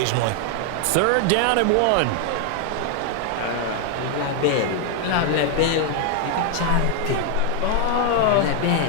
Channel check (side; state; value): both; different; correlation 0.00